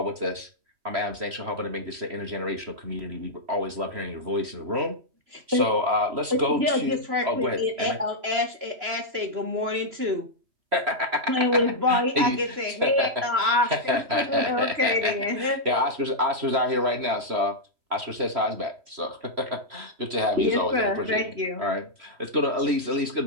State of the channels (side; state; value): left; late; 3.1 ms